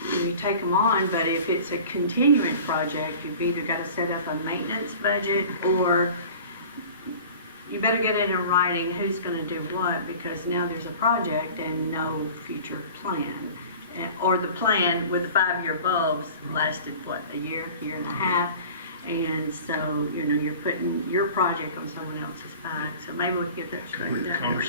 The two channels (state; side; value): inverted; both; correlation -0.42